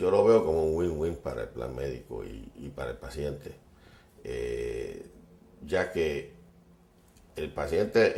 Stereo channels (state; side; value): identical; both; correlation 1.00